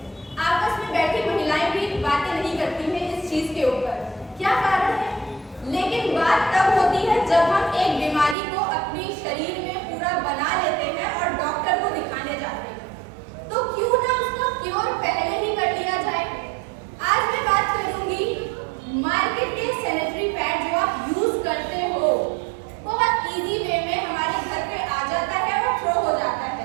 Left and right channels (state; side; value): drops out; left; at 8.3 s